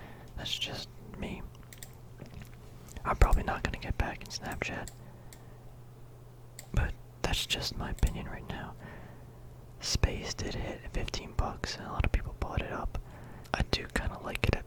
That's just me. I'm probably not going to get back in Snapchat, but that's just my opinion right now. Space did hit at 15 bucks, and a lot of people bought it up. I do kind of like it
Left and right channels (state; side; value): identical; both; correlation 1.00